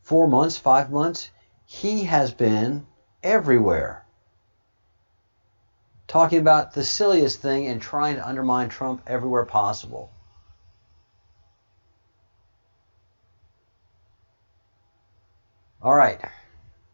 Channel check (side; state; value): both; inverted; correlation -1.00